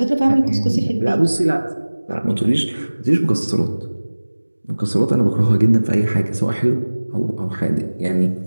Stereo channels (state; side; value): inverted; both; correlation -1.00